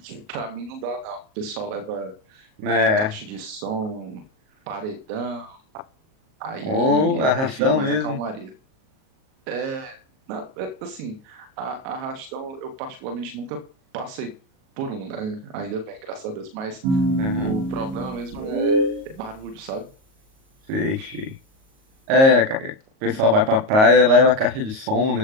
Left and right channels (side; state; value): left; late; 38 ms